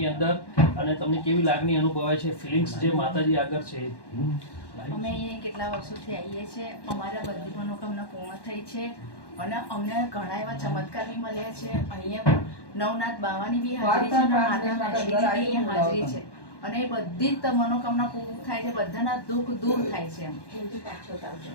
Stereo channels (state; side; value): late; right; 1.1 ms